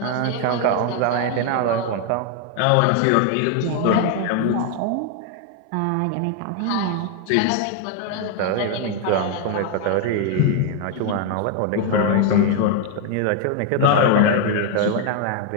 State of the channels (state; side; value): different; both; correlation 0.00